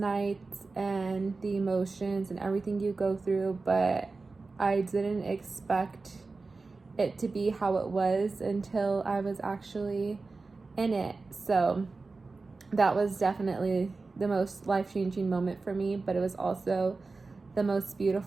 and the emotions and everything you go through, but I didn't expect it to be how it was until I was actually in it. So that was definitely the most life-changing moment for me, but it was also the most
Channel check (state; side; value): quieter; left; 3.8 dB